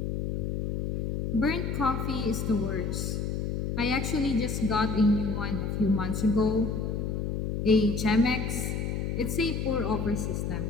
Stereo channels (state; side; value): noise; left; hum, 2 dB below the sound